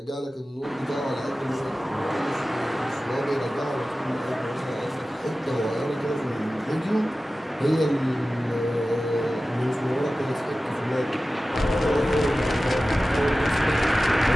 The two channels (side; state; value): both; normal; correlation 0.96